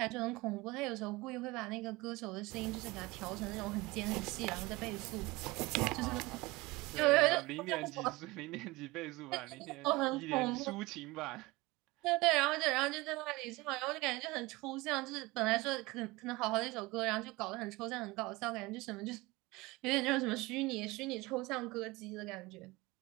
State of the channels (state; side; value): quieter; left; 22.1 dB